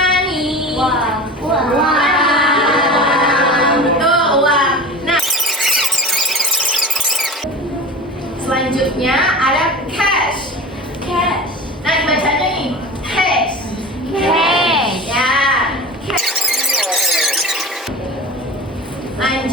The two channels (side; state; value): both; normal; correlation 0.33